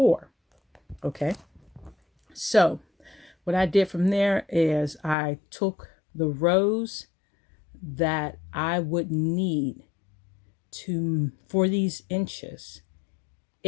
Okay. So what I did from there is I took the rows that I would need for these inches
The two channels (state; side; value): drops out; right; at 5.2 s